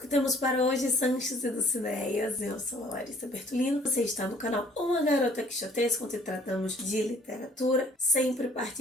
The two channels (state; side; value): normal; both; correlation 0.58